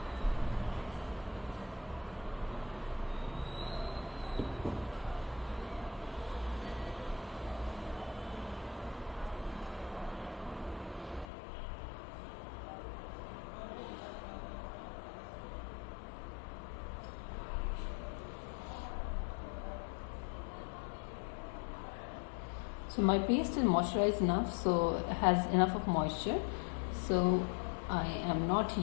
So my paste is moisturized enough, so it has enough of moisture, so I am not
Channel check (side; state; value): right; drops out; at 11.2 s